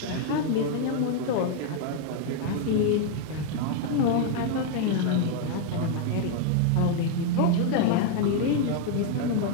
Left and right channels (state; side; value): different; both; correlation 0.00